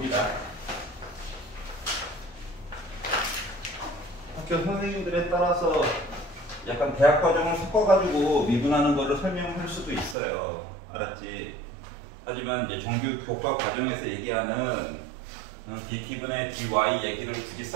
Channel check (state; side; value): drops out; left; at 10.2 s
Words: 학교 선생님들에 따라서 약간 대학 과정을 섞어가지고 미분하는 거를 설명할 수도 있어요. 알았지? 하지만 이제 정규 교과 과정에서 얘기하는 dt분의 dy 얘기를 굳이